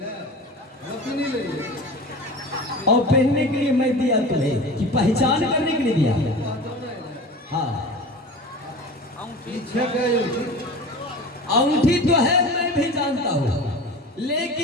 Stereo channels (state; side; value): normal; both; correlation 0.35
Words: और पहनने के लिए मैं दिया तुम्हें कि पहचान करने के लिए दिया। हाँ अंगूठी तो है मैं भी जानता हूँ,